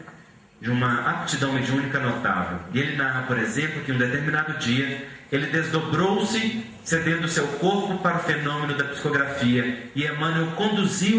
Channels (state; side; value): identical; both; correlation 1.00